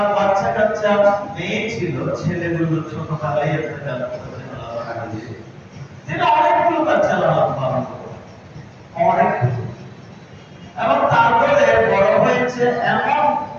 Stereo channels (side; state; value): both; identical; correlation 1.00